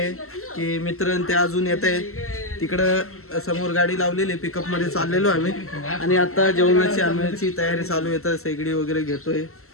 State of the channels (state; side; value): late; right; 0.63 ms